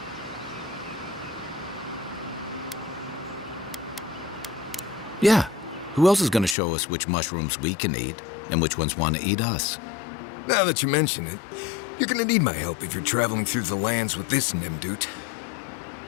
Yeah. Who else is going to show us which mushrooms we can eat and which ones want to eat us? Now that you mention it, you're gonna need my help if you're traveling through the lands with this Nimdude.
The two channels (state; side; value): drops out; right; at 6.6 s